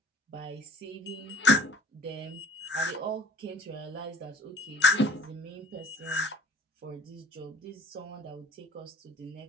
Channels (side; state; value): both; normal; correlation 0.50